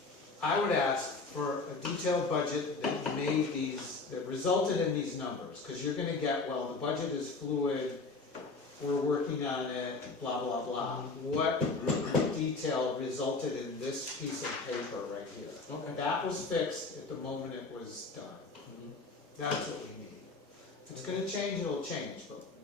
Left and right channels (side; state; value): right; quieter; 3.9 dB